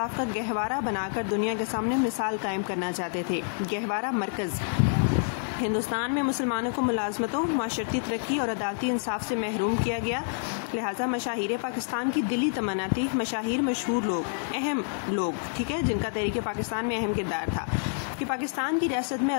کا گہوارہ بنا کر دنیا کے سامنے مثال قائم کرنا چاہتے تھے۔ گہوارہ مرکز ہندوستان میں مسلمانوں کو ملازمتوں، معاشرتی ترقی اور عدالتی انصاف سے محروم کیا گیا، لہٰذا مشاہیر پاکستان کی دلی تمنا تھی، مشاہیر مشہور لوگ، اہم لوگ، ٹھیک ہے، جن کا تحریک پاکستان میں اہم کردار تھا، کہ پاکستان کی ریاست میں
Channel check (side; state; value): right; silent; 59 dB below the other